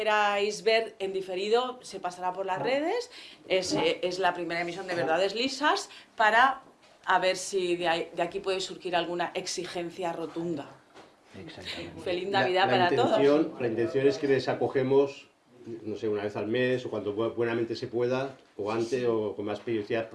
ver en diferido, se pasará por las redes. Es la primera emisión de Verdades Lisas, para a ver si de aquí puede surgir alguna exigencia rotunda. Exactamente. Feliz Navidad para todos. La intención es que les acogemos, no sé, una vez al mes o cuando buenamente se pueda, o antes o con más periodicidad,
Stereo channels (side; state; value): both; identical; correlation 1.00